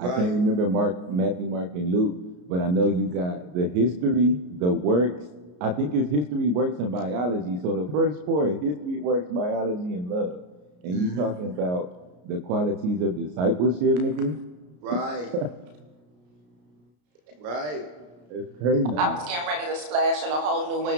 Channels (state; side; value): late; left; 33 ms